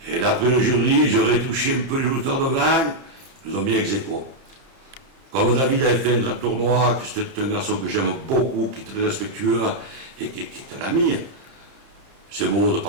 Et d'après le jury, j'aurais touché un peu les lutteurs devant, ils nous ont mis ex aequo. Comme David avait fait un grand tournoi, que c'était un garçon que j'aime beaucoup, qui est très respectueux et qui est un ami, c'est beau de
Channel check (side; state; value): left; late; 31 ms